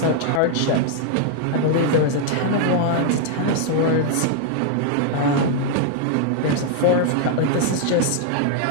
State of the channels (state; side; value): different; both; correlation 0.00